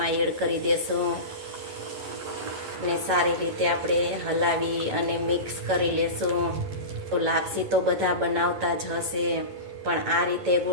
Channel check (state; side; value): late; left; 11 ms